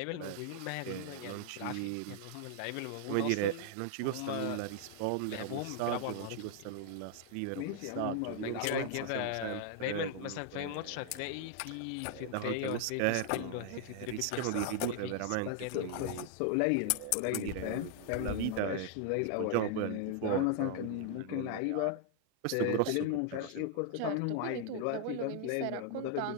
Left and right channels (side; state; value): both; different; correlation 0.00